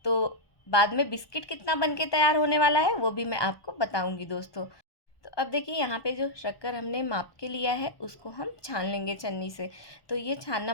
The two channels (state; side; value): late; right; 1.2 ms